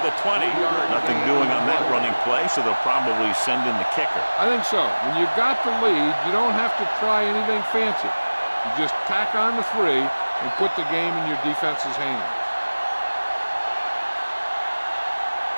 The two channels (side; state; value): both; inverted; correlation -1.00